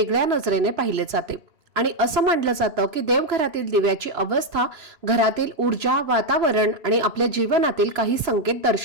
नजरेने पाहिले जाते. आणि असं मानलं जातं की देवघरातील दिव्याची अवस्था घरातील ऊर्जा, वातावरण आणि आपल्या जीवनातील काही संकेत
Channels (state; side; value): late; left; 3.0 ms